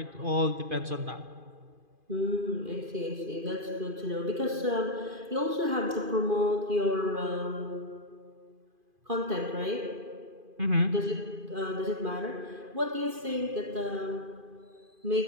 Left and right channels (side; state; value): left; late; 2.5 ms